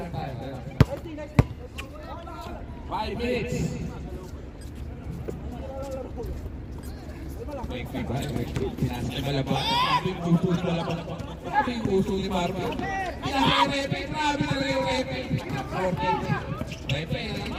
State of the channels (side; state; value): both; identical; correlation 1.00